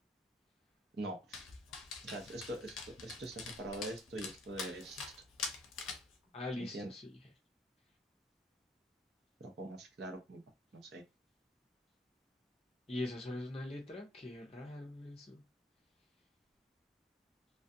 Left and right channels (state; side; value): normal; both; correlation 0.61